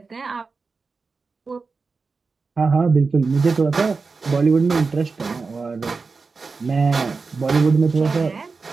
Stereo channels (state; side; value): quieter; left; 4.4 dB